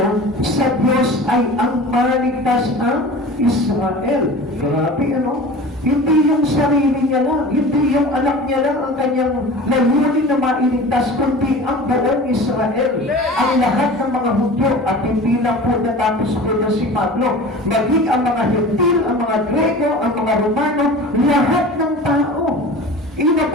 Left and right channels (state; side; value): normal; both; correlation 0.37